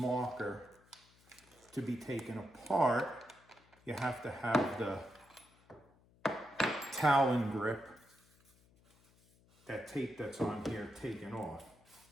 to be taken apart, you have to have the Talon grip, that tape that's on here, taken off.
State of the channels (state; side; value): noise; left; hum, 30 dB below the sound